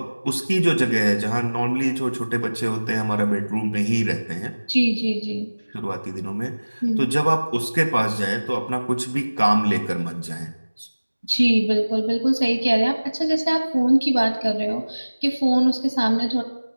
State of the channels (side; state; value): both; inverted; correlation -1.00